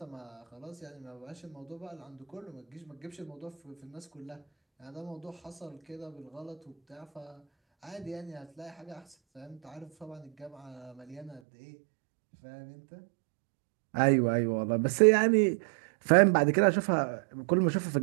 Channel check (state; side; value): drops out; left; at 11.4 s